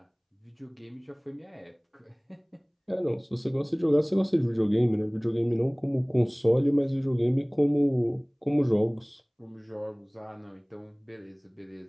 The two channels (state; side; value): identical; both; correlation 1.00